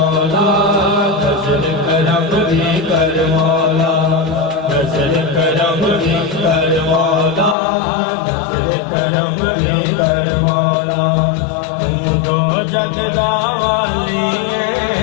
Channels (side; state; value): right; drops out; at 7.6 s